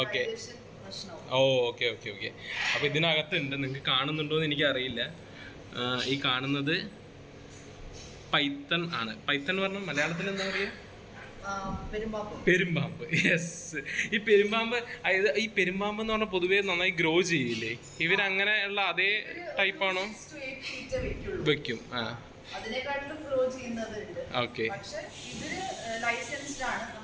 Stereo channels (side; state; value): both; identical; correlation 1.00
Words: ഓക്കെ. ഓ ഓക്കെ ഓക്കെ ഓക്കെ. അപ്പൊ ഇതിനകത്തുണ്ട്, നിങ്ങൾക്ക് കാണുന്നുണ്ടോ എന്ന് എനിക്ക് അറിയില്ല. ഈ കാണുന്നത് പൈത്തൺ ആണ്. പൈത്തൺ പറഞ്ഞാൽ മലയാളത്തിൽ എന്താ പറയുക? പെരുമ്പാമ്പ്. യെസ്. ഈ പെരുമ്പാമ്പ്, അതായത് ഈ പെരുമ്പാമ്പ് എന്ന് പറഞ്ഞാൽ പൊതുവേ നന്നായി ഗ്രോ ചെയ്യില്ലേ? ഇവരങ്ങനെയുള്ള അതേ ടൈപ്പാണോ? വെക്കും. ആ ഓക്കെ.